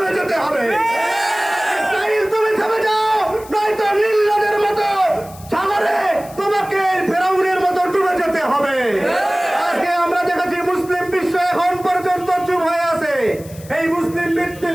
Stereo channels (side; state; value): left; noise; hiss, 20 dB below the sound